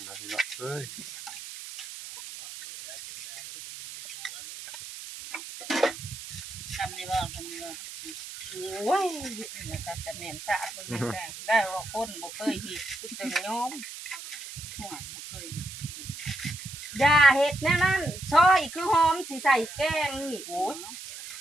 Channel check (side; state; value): right; noise; hiss, 11 dB below the sound